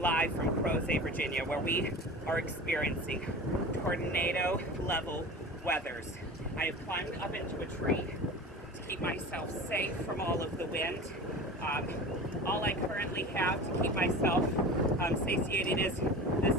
from Crozet, Virginia, where we are experiencing tornado-level weathers. I have climbed up into a tree to keep myself safe from all of the wind. All I currently have to keep myself satiated is this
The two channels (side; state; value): both; normal; correlation 0.35